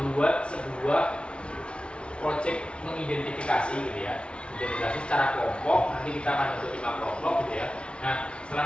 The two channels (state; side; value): late; right; 0.058 ms